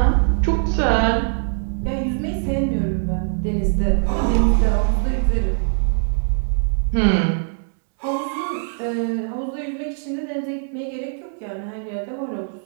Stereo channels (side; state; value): left; silent; digital silence